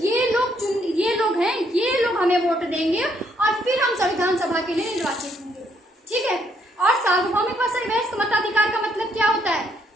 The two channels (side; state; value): both; normal; correlation 0.71